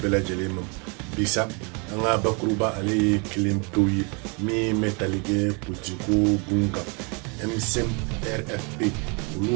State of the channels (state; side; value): quieter; left; 33.0 dB